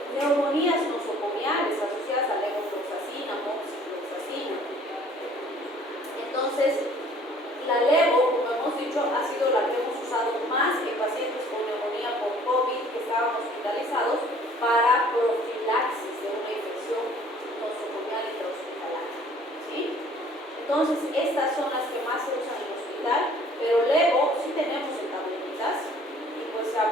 neumonías nosocomiales asociadas a levofloxacina, moxifloxacina. Entonces, la levo, como hemos dicho, ha sido la que hemos usado más en pacientes con neumonía por COVID que estaban hospitalizados para profilaxis de una infección nosocomial intrahospitalaria. ¿Sí? Entonces, estas son las que más se usan en el hospital, pero levo sí tenemos en tabletitas y pues se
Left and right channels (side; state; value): both; normal; correlation 0.55